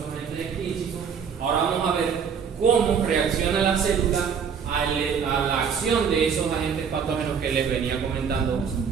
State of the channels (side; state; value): left; quieter; 6.8 dB